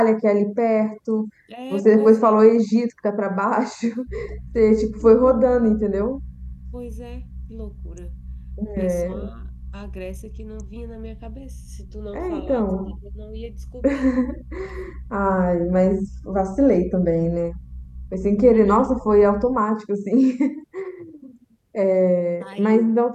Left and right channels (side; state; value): both; identical; correlation 1.00